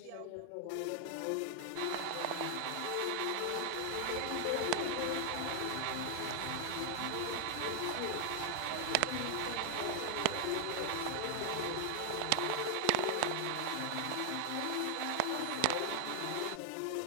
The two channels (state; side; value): different; both; correlation 0.00